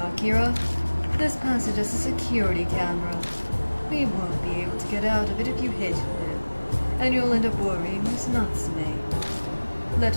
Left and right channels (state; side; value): inverted; both; correlation -1.00